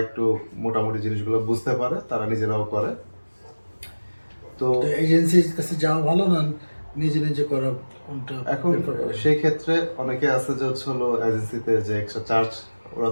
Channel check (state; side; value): inverted; both; correlation -1.00